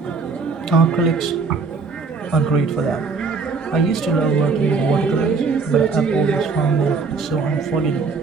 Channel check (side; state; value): left; quieter; 4.6 dB